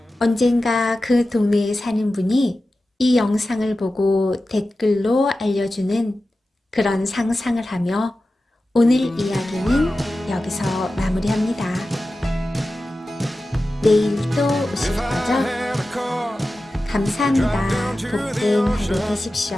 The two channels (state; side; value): normal; both; correlation 0.94